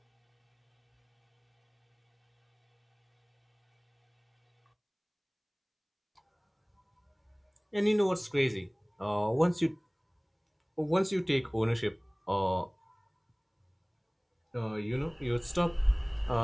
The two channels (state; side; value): identical; both; correlation 1.00